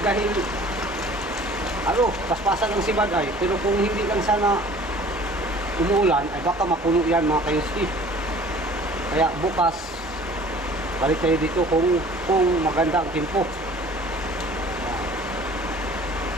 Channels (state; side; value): normal; both; correlation 0.49